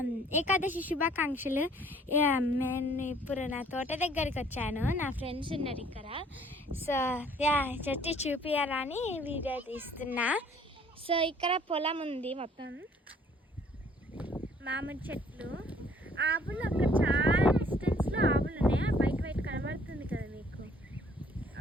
ఏకాదశి శుభాకాంక్షలు. నేను ఇప్పుడు నా తోట దగ్గరికి వచ్చాను. నా ఫ్రెండ్స్ ఉన్నారు ఇక్కడ. సో చెట్టు చూపించాలని వీడియో తీస్తున్నా. సో ఇక్కడ పొలం ఉంది, మొత్తం మామిడి చెట్లు, ఆవులు. అక్కడ చాలా డిస్టెన్స్లో ఆవులు ఉన్నాయి. వైట్ వైట్ కనబడుతుంది కదా మీకు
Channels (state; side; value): normal; both; correlation 0.58